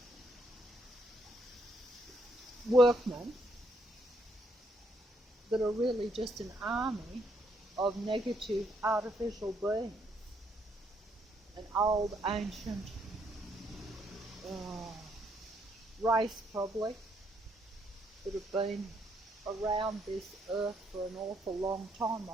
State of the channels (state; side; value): normal; both; correlation 0.72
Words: workmen that are really just an army of negative artificial beings. An old, ancient race probably that have been around this earth for an awful long time,